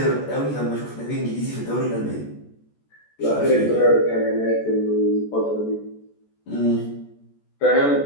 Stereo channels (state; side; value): late; right; 14 ms